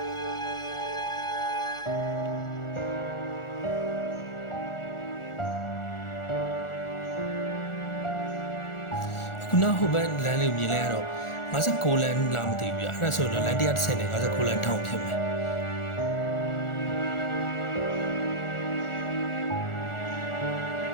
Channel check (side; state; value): right; late; 1.4 ms